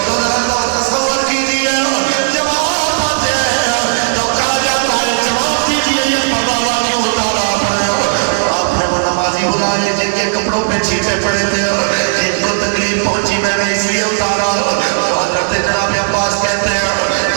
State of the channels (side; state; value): left; silent; digital silence